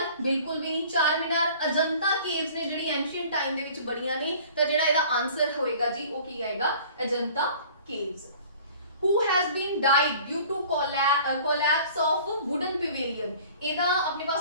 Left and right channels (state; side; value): inverted; both; correlation -0.48